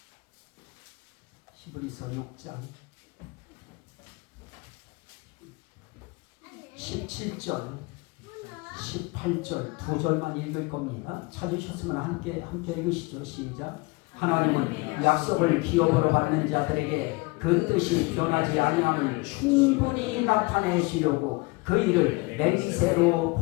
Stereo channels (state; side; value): quieter; right; 25.2 dB